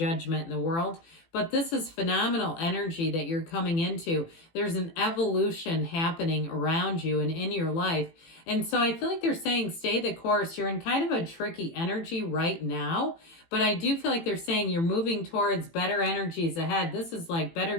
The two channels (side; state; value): right; late; 18 ms